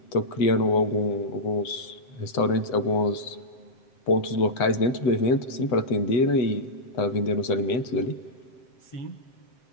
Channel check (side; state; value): right; late; 7.7 ms